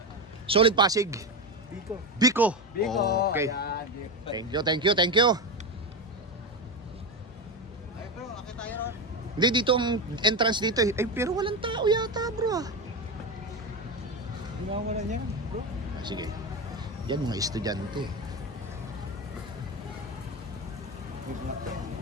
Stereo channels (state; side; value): normal; both; correlation 0.16